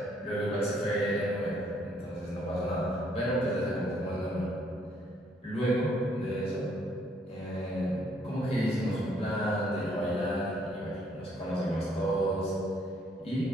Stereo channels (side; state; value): both; normal; correlation 0.67